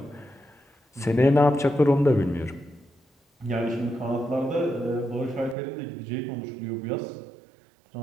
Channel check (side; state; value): left; drops out; at 5.6 s